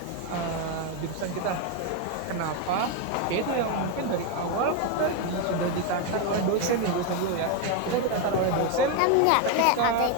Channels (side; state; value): both; different; correlation 0.02